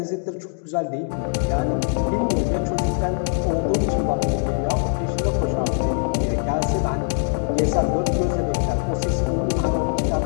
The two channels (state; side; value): silent; right; 57 dB below the other